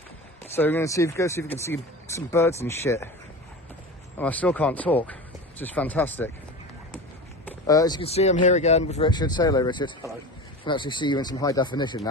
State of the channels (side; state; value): both; normal; correlation 0.30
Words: So we're going to go see if we can see some birds and shit. And I still can't talk, which is fantastic. As you can see, I'm here again with Richard. Say hello, Richard. Hello. I can actually see you in some high definition